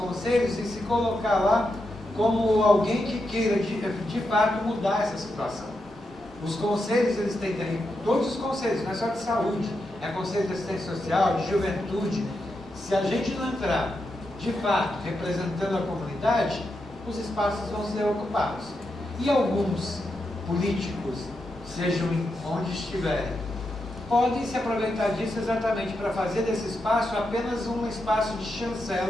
e se colocar lá como alguém que queira de fato mudar essa situação. Os conselhos, eles têm todos os conselhos, não é só de saúde, é conselho de assistência social, de juventude. Se a gente não entrar de fato representando a comunidade, os espaços vão ser ocupados. E alguns políticos, sejam onde estiverem, podem se aproveitar disso exatamente para fazer desse espaço apenas um espaço de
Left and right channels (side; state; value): both; normal; correlation 0.86